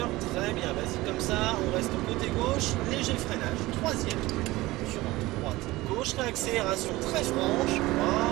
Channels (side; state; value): left; quieter; 19.2 dB